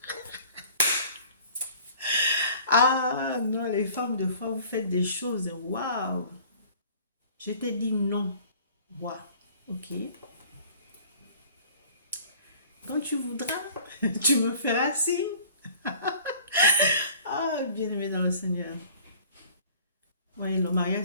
Ah non, les femmes, de fois, vous faites des choses. Waouh! Je t'ai dit non. Waouh! Ok. Quand tu voudras, tu me feras signe. Ah, bien-aimé dans le Seigneur. Oui, le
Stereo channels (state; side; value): inverted; both; correlation -0.50